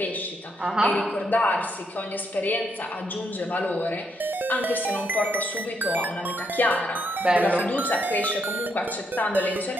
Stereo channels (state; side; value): normal; both; correlation 0.76